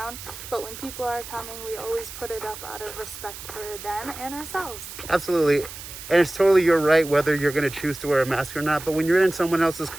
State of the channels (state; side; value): noise; right; hiss, 12 dB below the sound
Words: But when people are coming, we always put it up out of respect for them and ourselves. Absolutely. And it's totally your right whether you're going to choose to wear a mask or not. But when you're in someone else's